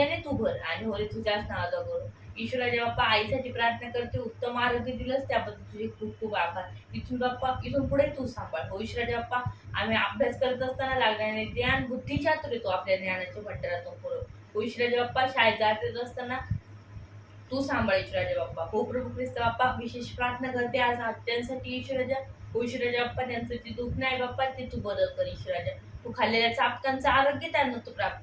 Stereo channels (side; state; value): both; identical; correlation 1.00